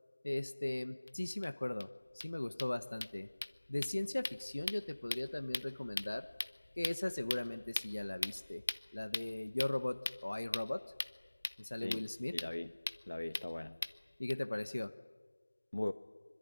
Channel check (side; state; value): both; inverted; correlation -1.00